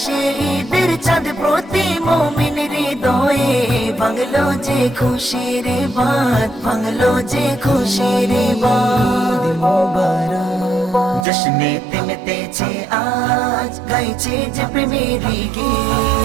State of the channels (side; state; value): left; drops out; at 11.2 s